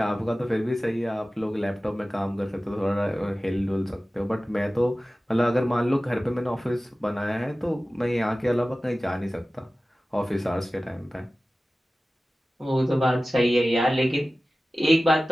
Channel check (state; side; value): normal; both; correlation 0.96